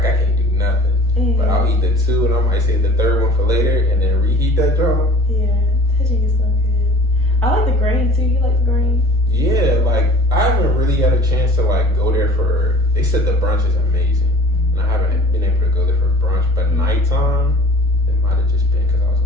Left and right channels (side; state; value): right; noise; rumble, 20 dB below the sound